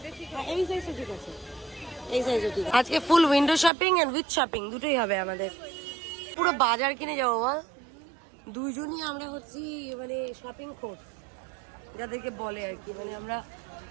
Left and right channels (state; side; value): drops out; left; at 3.7 s